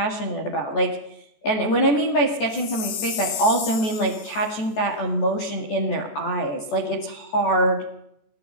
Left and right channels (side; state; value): right; late; 14 ms